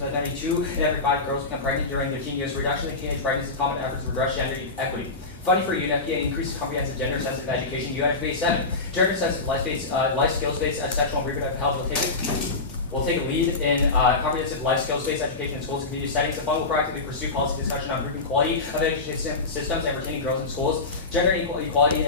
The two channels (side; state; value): right; quieter; 3.6 dB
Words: By 92 in every 5 girls become pregnant during their teen years. Reduction in teenage pregnancy, common efforts to redress gender equity. Funding for UNFPA increases comprehensive gender-sensitive education. UNFPA 7. Gender-sensitive life skills-based sexual and reproductive health will take a lead in comprehensive life skills-based education in schools and community settings. The fund will proactively pursue policy discussion on improving quality of education systems and retaining girls in schools. Gender equality in